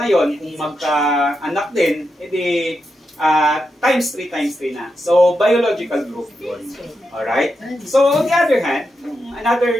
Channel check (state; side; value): normal; both; correlation 0.86